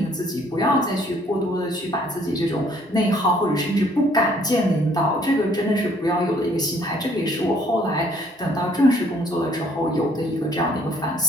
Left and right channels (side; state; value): both; normal; correlation 0.62